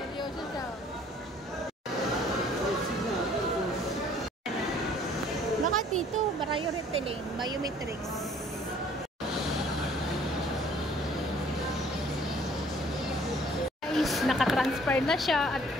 siya. Baka dito, priority lane, biometrics. Guys, nakatransfer na siya at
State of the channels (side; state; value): both; normal; correlation 0.57